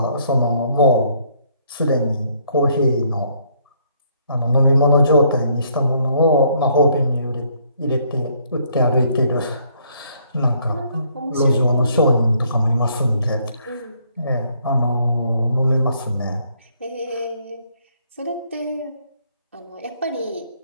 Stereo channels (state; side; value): inverted; both; correlation -0.67